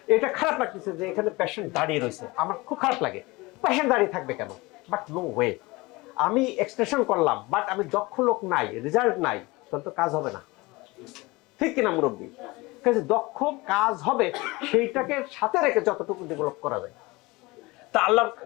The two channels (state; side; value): quieter; right; 22.9 dB